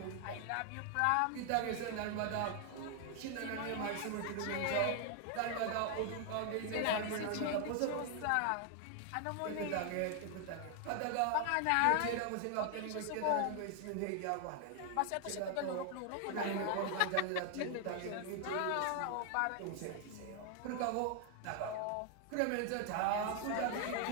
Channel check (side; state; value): both; different; correlation 0.00